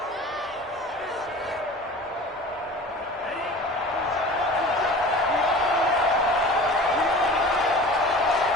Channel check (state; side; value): normal; both; correlation 0.39